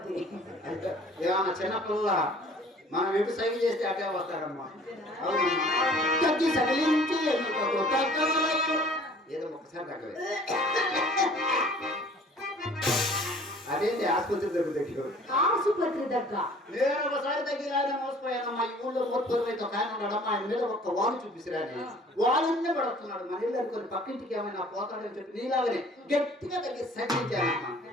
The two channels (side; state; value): both; normal; correlation 0.51